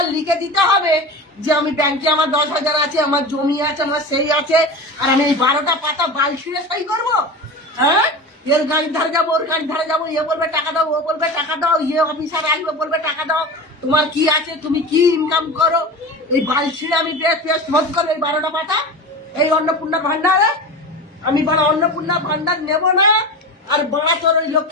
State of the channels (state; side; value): normal; both; correlation 0.29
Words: লিখে দিতে হবে যে আমি ব্যাংকে আমার 10,000 আছে, আমার জমি আছে, আমার সেই আছে, আর আমি এই 12টা পাতা বাল ছিঁড়ে সই করবো। হ্যাঁ, এর গাড়ির ধারে যাবো, ওর গাড়ির ধারে যাবো, এ বলবে টাকা দাও, ও বলবে টাকা দাও, ইয়ে অফিসার আসবে বলবে টাকা দাও। তোমার কি আছে, তুমি কি ইনকাম করো, এই বাল ছিঁড়ে আমি পেস্ট ভোট করবো এই 12টা পাতা এই অন্নপূর্ণা ভান্ডারে। আমি বড় অন্নপূর্ণা ভান্ডার নেব না। আর বড়া তোর ওই